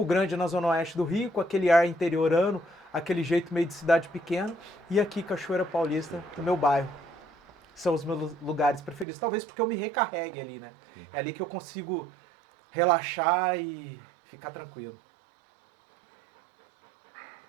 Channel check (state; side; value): drops out; left; at 9.1 s